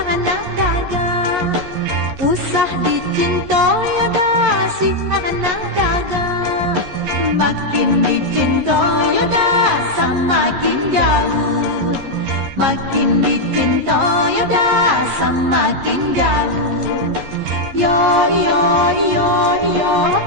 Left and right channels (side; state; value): left; late; 11 ms